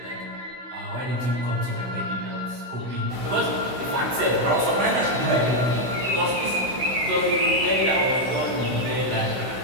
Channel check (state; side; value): late; left; 16 ms